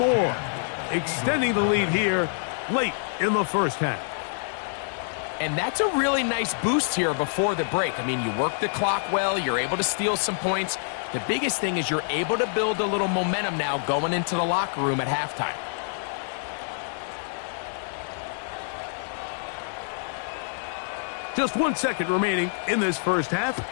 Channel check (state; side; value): silent; right; digital silence